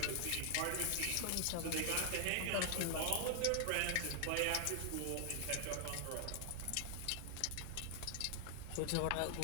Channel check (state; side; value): different; both; correlation 0.00